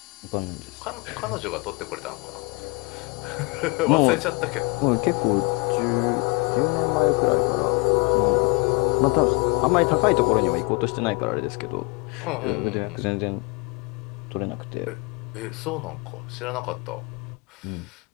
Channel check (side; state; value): right; quieter; 29.6 dB